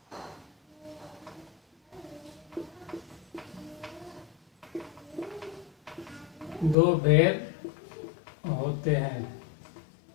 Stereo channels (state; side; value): drops out; right; at 6.8 s